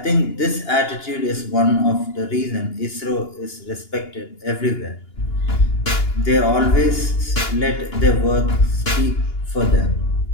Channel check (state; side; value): late; right; 2.9 ms